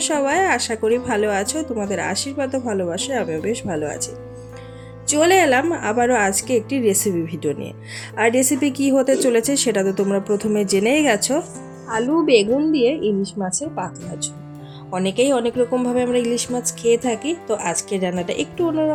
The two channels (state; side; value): identical; both; correlation 1.00